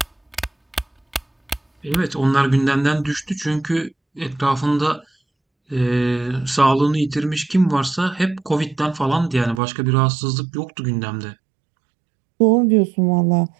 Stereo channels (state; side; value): drops out; left; at 9.6 s